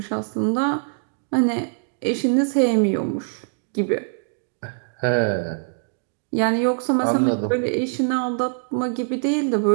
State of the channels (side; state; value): left; silent; digital silence